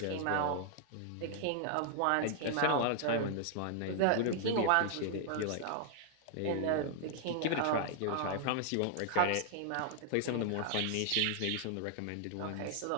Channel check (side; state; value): both; different; correlation 0.00